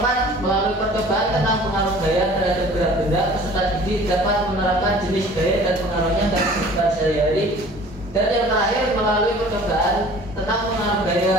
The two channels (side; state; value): both; normal; correlation 0.47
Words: melalui percobaan tentang pengaruh gaya terhadap gerak benda, peserta didik dapat menerapkan jenis gaya dan pengaruhnya dalam kehidupan sehari-hari. Dan yang terakhir, melalui percobaan tentang pengaruh